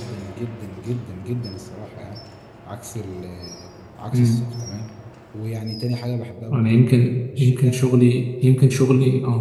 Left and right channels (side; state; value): both; identical; correlation 1.00